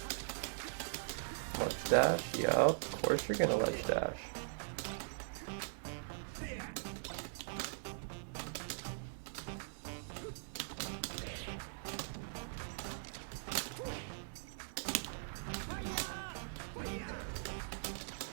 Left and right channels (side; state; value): left; silent; digital silence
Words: Ledge dash? Yup, of course you're gonna ledge dash.